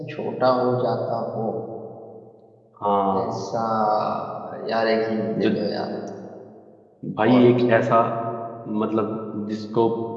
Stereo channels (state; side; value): identical; both; correlation 1.00